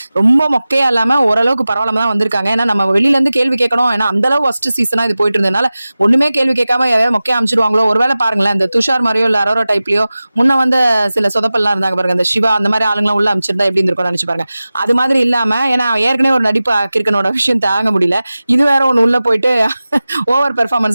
ரொம்ப மொக்கையா இல்லாமல் ஓரளவுக்கு பரவாயில்லாம தான் வந்திருக்காங்க. ஏன்னா நம்ம வெளியிலேருந்து கேள்வி கேட்கணும். ஏன்னா அந்தளவு ஃபர்ஸ்ட் சீசனாக இது போயிட்டு இருந்ததுனால ஒன்றுமே கேள்வி கேட்காம ஏதாவது மொக்கையா அமைச்சிருவாங்களோ. ஒருவேளை பாருங்களேன், இந்த துஷார் மாதிரியோ இல்லை அரோரா டைப்லையோ முன்ன வந்து சில சொதப்பெல்லாம் இருந்தாங்க பாருங்க, இந்த சிவா அந்த மாதிரி ஆளுங்களாம் உள்ள அமைச்சிருந்தா எப்படி இருந்திருக்கும்னு நினைச்சு பாருங்க. அது மாதிரி இல்லாம, ஏன்னா ஏற்கனவே ஒரு நடிப்பு கிரிக்கனோட விஷயம் தாங்க முடியல, இது வேற ஒன்று உள்ள போயிட்டு ஓவர்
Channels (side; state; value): both; inverted; correlation -0.96